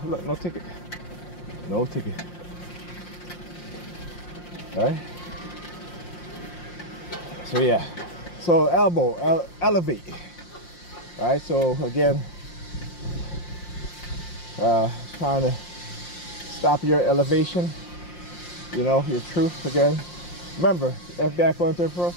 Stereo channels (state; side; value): late; right; 5.7 ms